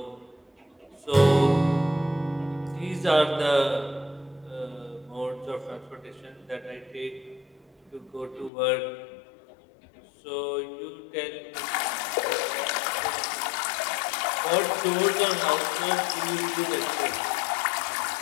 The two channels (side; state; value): right; drops out; at 8.5 s